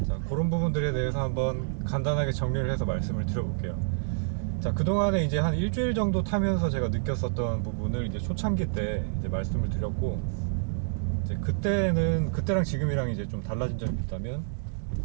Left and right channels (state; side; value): silent; left; digital silence